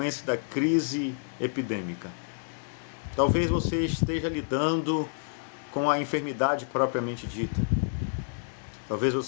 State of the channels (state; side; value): silent; right; digital silence